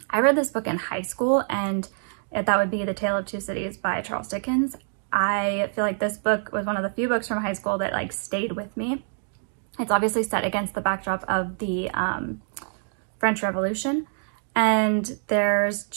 I read this book in high school, and that would be The Tale of Two Cities by Charles Dickens. I feel like this book was one of the few books from high school that stayed with me. It's obviously set against the backdrop of the French Revolution, and there's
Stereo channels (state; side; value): silent; left; 61 dB below the other